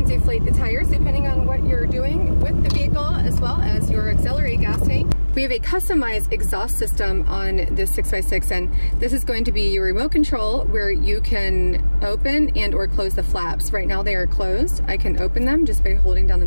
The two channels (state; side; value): inverted; both; correlation -1.00